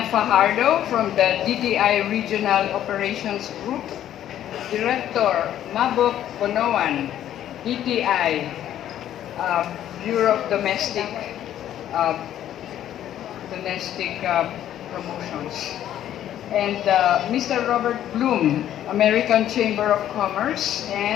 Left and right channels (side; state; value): right; quieter; 11.5 dB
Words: Fajardo from the DTI Regional Operations Group, Director Mabok Bonoan, DTI Bureau of Domestic Promotions, and Mr. Robert Bloom, American Chamber of Commerce,